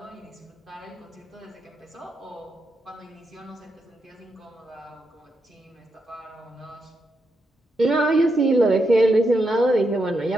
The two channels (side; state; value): both; normal; correlation 0.83